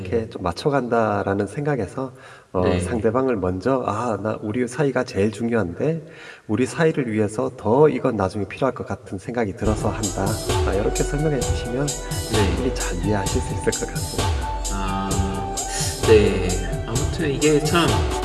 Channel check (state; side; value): identical; both; correlation 1.00